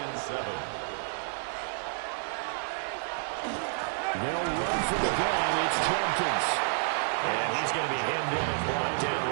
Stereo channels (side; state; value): left; silent; digital silence